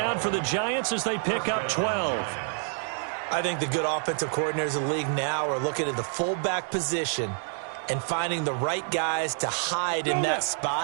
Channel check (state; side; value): silent; left; 56 dB below the other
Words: for the Giants as they pick up 12. I think the good offensive coordinators in the league now are looking at the fullback position and finding the right guys to hide in that